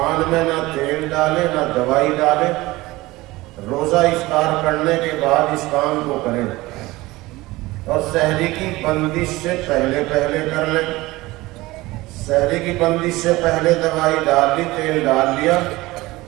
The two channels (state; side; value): quieter; left; 19.8 dB